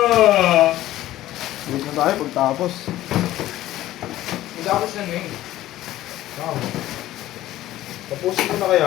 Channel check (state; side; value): quieter; right; 14.7 dB